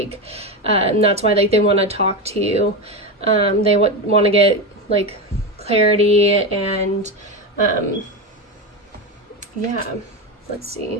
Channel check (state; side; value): normal; both; correlation 0.17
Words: And that's why like they want to talk to you. They want to get like clarity, and yeah, let's